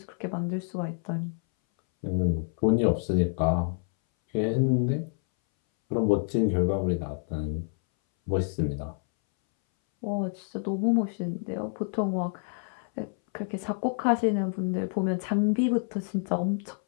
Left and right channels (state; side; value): silent; right; 59 dB below the other